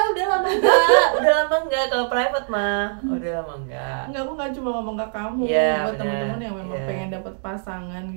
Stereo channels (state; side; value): silent; left; digital silence